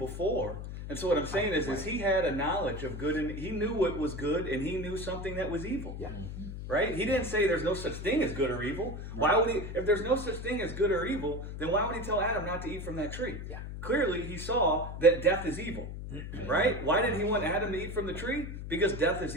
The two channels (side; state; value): left; noise; hum, 8 dB below the sound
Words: And so what I'm saying is he had a knowledge of good, and he knew what was good, and he knew something that was evil. Right? He didn't say there's no such thing as good or evil. Why would he? If there's no such thing as good or evil, then why would he tell Adam not to eat from that tree? Clearly, he saw that death is evil. Right? Why did he want Adam to eat from the tree? Because death is